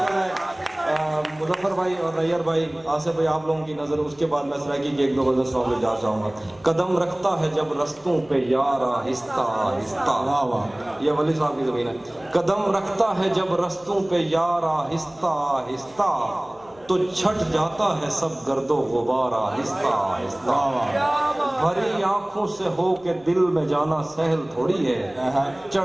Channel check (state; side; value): noise; left; hum, 27 dB below the sound